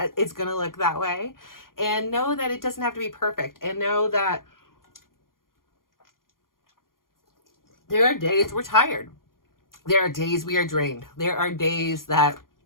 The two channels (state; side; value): late; right; 0.91 ms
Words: it's going to look that way. And know that it doesn't have to be perfect. And know that there are days we're tired. There are days we are drained. There are days that